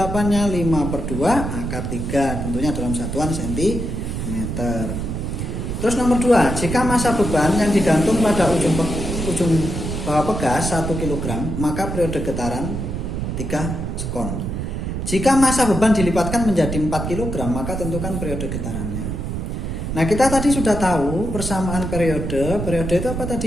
5/2 akar 3, tentunya dalam satuan cm. Terus nomor 2, jika massa beban yang digantung pada ujung bawah pegas 1 kg, maka periode getaran 3 sekon. Jika massa beban dilipatkan menjadi 4 kg, maka tentukan periode getarannya. Nah kita tadi sudah tahu persamaan periode itu apa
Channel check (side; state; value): right; noise; rumble, 4 dB below the sound